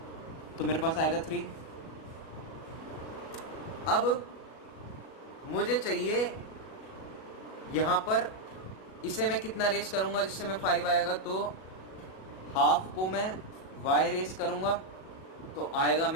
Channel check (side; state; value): right; late; 37 ms